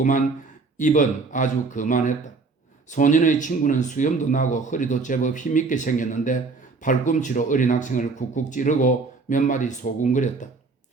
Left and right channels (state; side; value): quieter; left; 4.2 dB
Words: 입은 아주 거만했다. 소년의 친구는 수염도 나고 허리도 제법 힘있게 생겼는데 팔꿈치로 어린 학생을 쿡쿡 찌르고 몇 마디 소군거렸다.